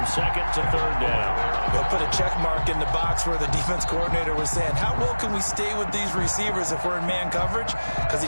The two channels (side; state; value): both; inverted; correlation -1.00